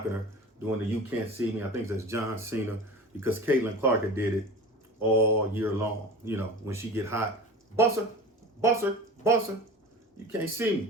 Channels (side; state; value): both; normal; correlation 0.34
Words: her, doing the "You Can't See Me." I think that's John Cena, because Caitlin Clark had did it all year long. You know, when she get hot, busser, busser, busser, you can't see